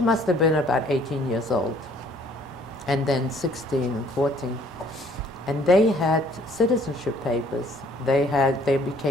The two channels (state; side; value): normal; both; correlation 0.60